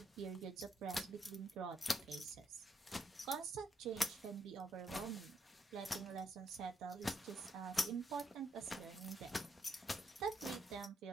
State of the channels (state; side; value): normal; both; correlation 0.77